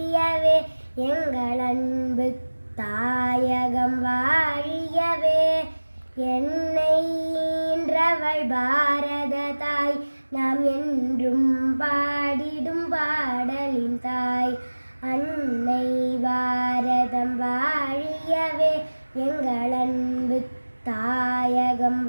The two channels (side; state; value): both; inverted; correlation -1.00